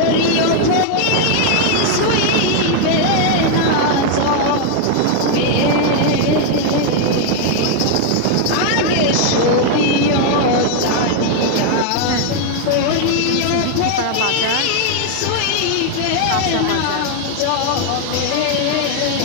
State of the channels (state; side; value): different; both; correlation 0.00